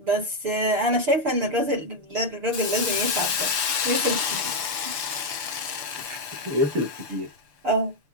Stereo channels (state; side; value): late; left; 6.8 ms